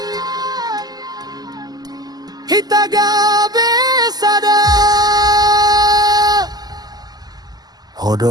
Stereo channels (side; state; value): left; late; 0.20 ms